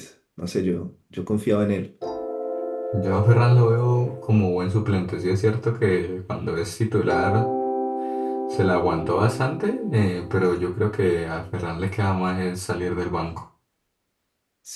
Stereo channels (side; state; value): both; identical; correlation 1.00